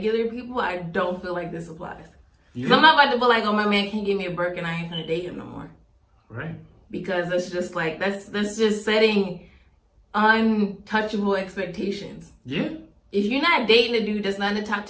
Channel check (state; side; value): identical; both; correlation 1.00